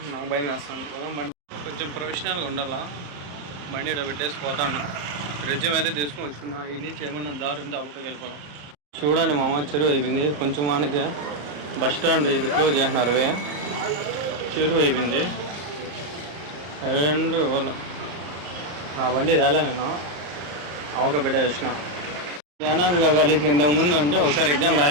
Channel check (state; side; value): late; left; 34 ms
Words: నాకు భయం వేస్తాను కదా. బండి కొంచెం ప్రొఫెషనల్గా ఉండాలా. బండి ఇటు పెట్టేసి పోతాను. రెజ్యూమ్ అయితే తీసుకొని వచ్చుకున్నా. ఇది నుంచి ఏమన్నా దారి ఉంటే అప్పటికి వెళ్ళిపోదాం. చూడండి మామ, చెరువు అయిపోయింది. కొంచెం మనకి బస్ స్టాండ్ ఇది క్లోజ్ చేసినారు. చెరువు అయిపోయింది. అండ్ వాళ్ళ ఆ బండి తేలే నేను అవక పెట్టే వచ్చిన. జ్ఞానాంబిక కాలేజ్కి ఇంతకుముందు అంటే ఒకసారి ఎగ్జామ్